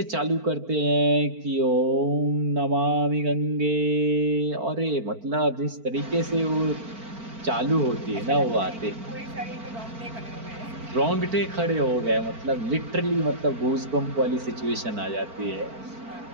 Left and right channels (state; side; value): late; left; 4.4 ms